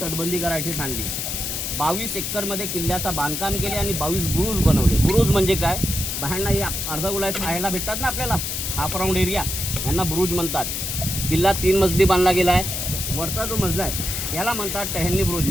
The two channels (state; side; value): noise; left; hiss, 3 dB below the sound